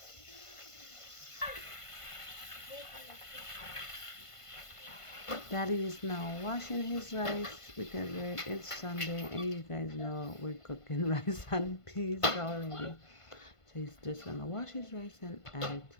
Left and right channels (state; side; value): late; right; 1.5 ms